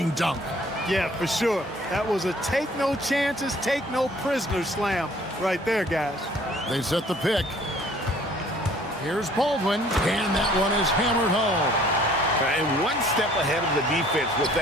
dunk. Yeah, for sure. That was a take no chances, take no prisoners slam right there, guys. They set the pick. Here's Baldwin, and that one is hammered home. And one step ahead of the defense with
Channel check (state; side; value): normal; both; correlation 0.56